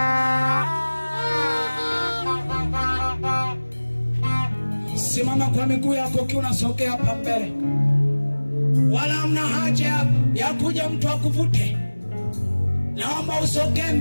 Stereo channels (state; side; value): inverted; both; correlation -1.00